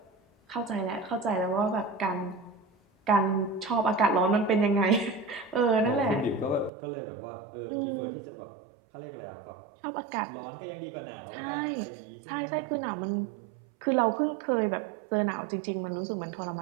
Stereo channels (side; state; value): left; drops out; at 6.7 s